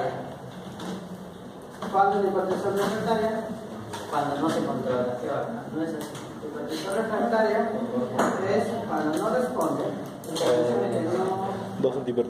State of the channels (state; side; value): identical; both; correlation 1.00